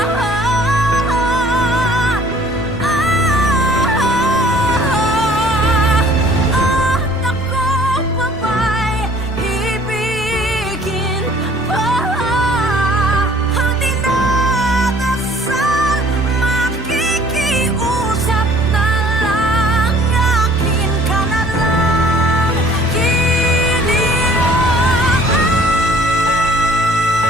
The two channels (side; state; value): both; normal; correlation 0.54